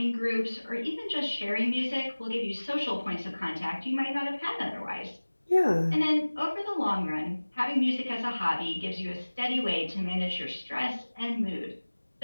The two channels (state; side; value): inverted; both; correlation -1.00